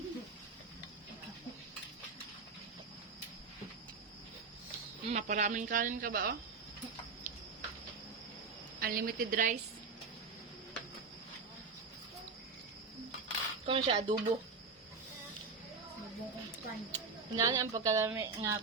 Maparaming kanin ka ba, oh? Unlimited rice. Kung siya, adobo. Hindi ang pagkalami nga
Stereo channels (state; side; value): quieter; left; 4.6 dB